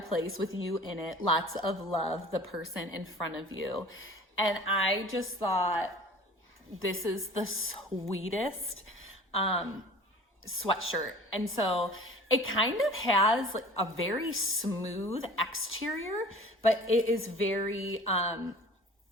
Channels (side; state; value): both; normal; correlation 0.44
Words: with you in it. Lots of love, the person in front of you. And I just thought, this is the sweetest sweatshirt. And so it kind of has like a very smooth exterior, but it is very, and